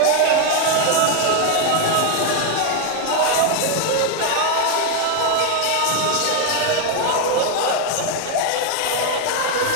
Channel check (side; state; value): both; different; correlation 0.01